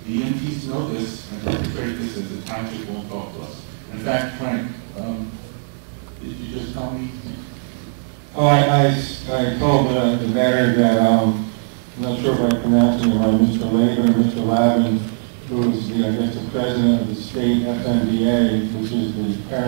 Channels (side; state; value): left; silent; digital silence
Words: The EMTs know this and perpetrate this as the township won't talk to us. In fact, Frank, did you just tell me? Oh, I told the mayor that, I'm not sure if I'm pronouncing it right, Mr. Laban or Mr. Lavin, who is the, I guess, the president of the state FMDA, which is the